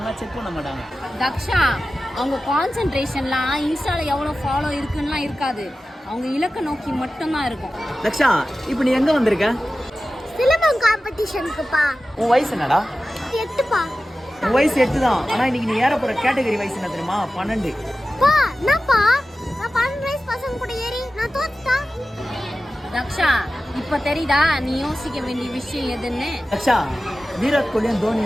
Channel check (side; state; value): both; normal; correlation 0.95